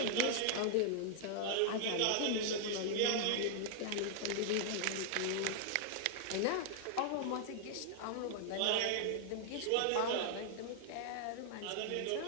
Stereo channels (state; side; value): different; both; correlation -0.01